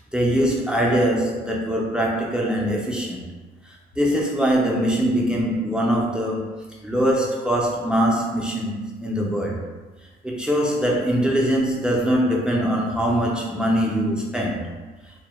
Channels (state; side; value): normal; both; correlation 0.68